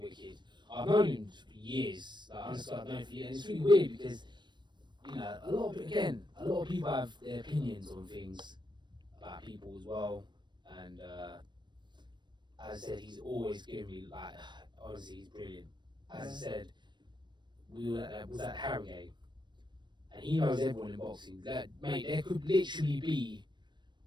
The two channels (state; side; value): late; left; 0.22 ms